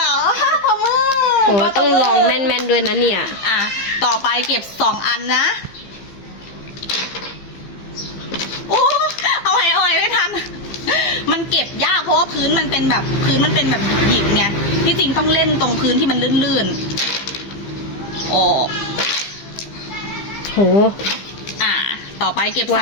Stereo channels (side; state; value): right; late; 15 ms